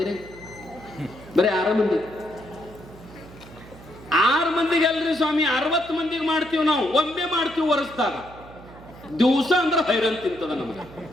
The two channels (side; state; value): right; noise; hum, 19 dB below the sound